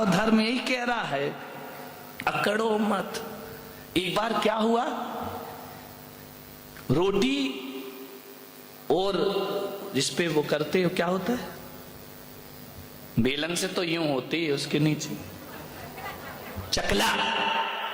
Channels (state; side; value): identical; both; correlation 1.00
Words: धर्म यही कह रहा है, अकड़ो मत। एक बार क्या हुआ, रोटी और जिसपे वो करते हो क्या होता है, बेलन से तो यूं होती है, उसके नीचे चकला,